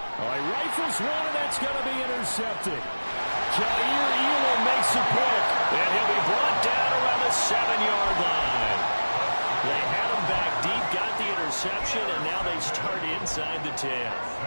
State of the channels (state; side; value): inverted; both; correlation -1.00